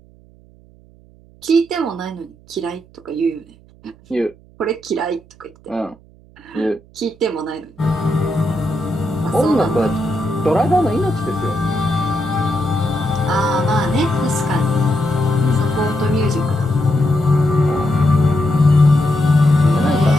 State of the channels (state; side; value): noise; right; hum, 27 dB below the sound